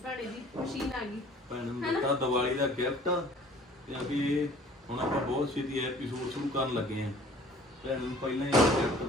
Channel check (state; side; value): normal; both; correlation 0.51